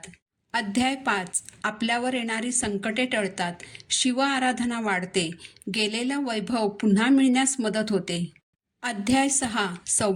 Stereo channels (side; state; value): both; identical; correlation 1.00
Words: अध्याय 5. आपल्यावर येणारी संकटे टळतात. शिव आराधना वाढते. गेलेलं वैभव पुन्हा मिळण्यास मदत होते. अध्याय 6.